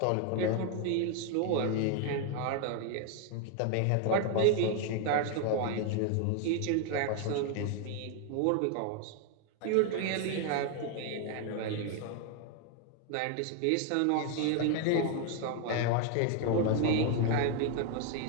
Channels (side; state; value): both; different; correlation 0.00